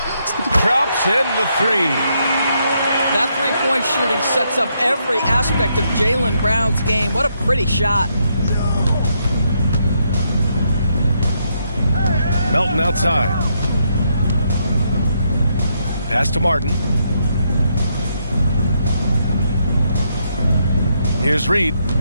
Drops in the 3. That three-point shooting sets up every aspect of Jaylen Brown's game. What a pretty shot. Melton outside. Pass to Martin. Here's Reed.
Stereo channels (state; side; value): inverted; both; correlation -0.77